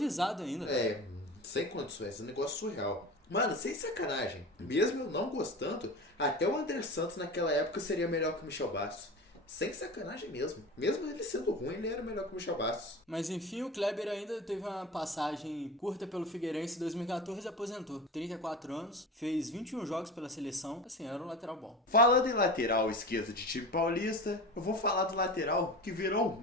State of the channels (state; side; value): normal; both; correlation 0.31